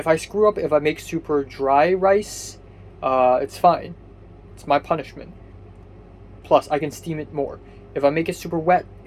I screw up, if I make super dry rice, it's fine. It's my punishment. Plus, I can steam it more. If I make it super wet,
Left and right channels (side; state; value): both; identical; correlation 1.00